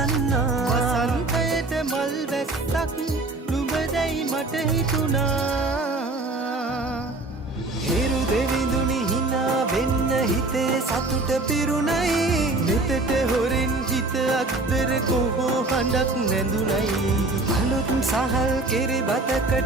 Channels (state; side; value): quieter; left; 3.1 dB